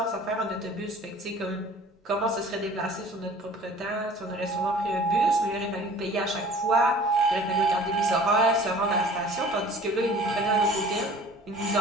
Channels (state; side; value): normal; both; correlation 0.47